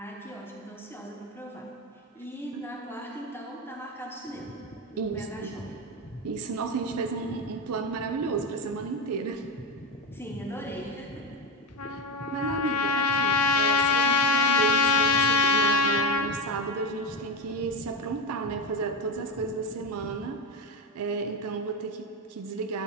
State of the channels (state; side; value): normal; both; correlation 0.15